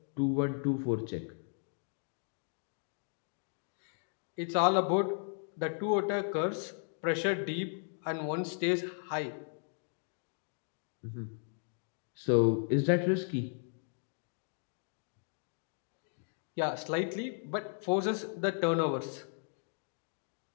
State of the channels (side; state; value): right; silent; 54 dB below the other